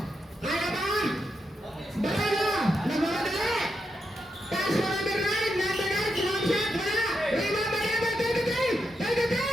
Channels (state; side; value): normal; both; correlation 0.84